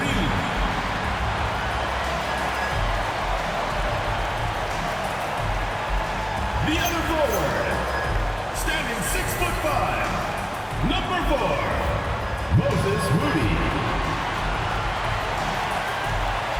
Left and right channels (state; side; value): identical; both; correlation 1.00